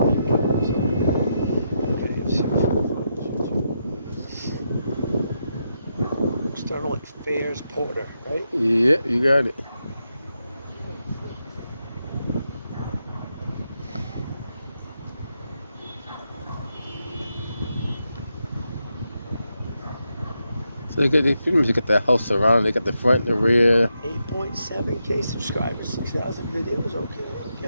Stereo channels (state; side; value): inverted; both; correlation -0.84